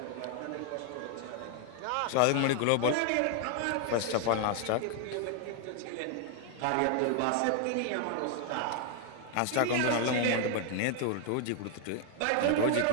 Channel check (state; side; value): different; both; correlation 0.00